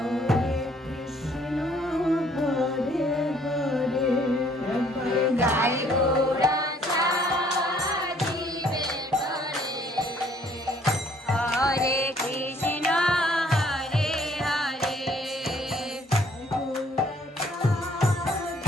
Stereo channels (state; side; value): normal; both; correlation 0.62